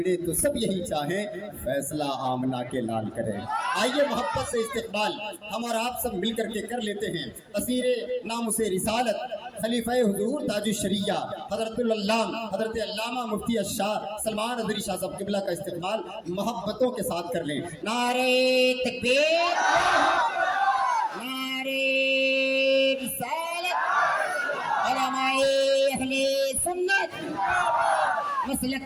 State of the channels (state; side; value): identical; both; correlation 1.00